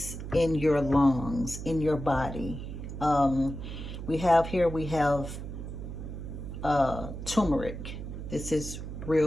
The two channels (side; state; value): right; noise; hum, 8 dB below the sound